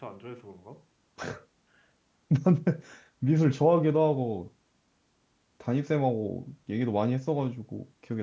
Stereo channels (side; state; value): both; identical; correlation 1.00